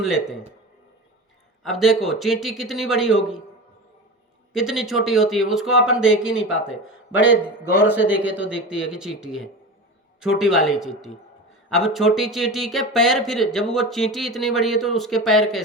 लेते हैं। अब देखो चींटी कितनी बड़ी होगी, कितनी छोटी होती है, उसको अपन देख ही नहीं पाते, बड़े गौर से देखे तो दिखती है कि चींटी है, छोटी वाली चींटी। अब छोटी चींटी के पैर, फिर जब वो चींटी इतनी बड़ी है तो उसके पैर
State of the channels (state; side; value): normal; both; correlation 0.28